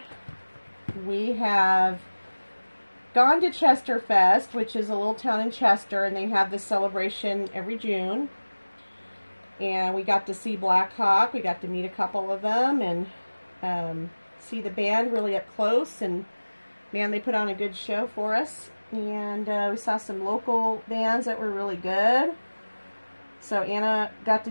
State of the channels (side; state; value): both; inverted; correlation -1.00